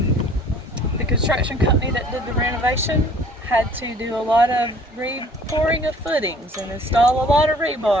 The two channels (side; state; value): both; normal; correlation 0.54